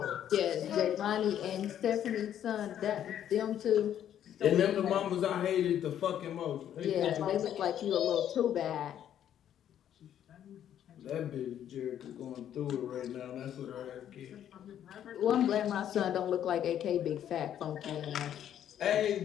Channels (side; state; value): right; quieter; 10.4 dB